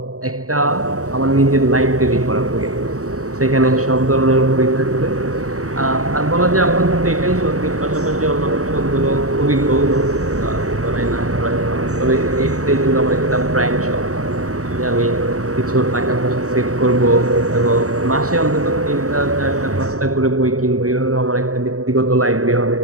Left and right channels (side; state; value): left; late; 0.65 ms